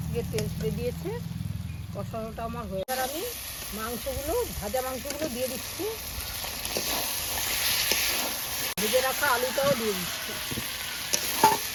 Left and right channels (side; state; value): both; identical; correlation 1.00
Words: থেকে তেল ছেড়ে দিয়েছে। কষানোটা আমার হয়ে, এবার আমি মাংসগুলো, ভাজা মাংসগুলো দিয়ে দিচ্ছি। ভেজে রাখা আলুটাও দিয়ে দিচ্ছি।